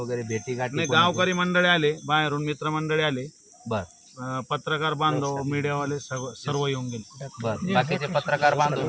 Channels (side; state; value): both; identical; correlation 1.00